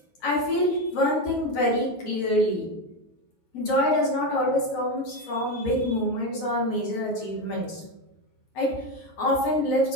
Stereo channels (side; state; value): right; late; 9.8 ms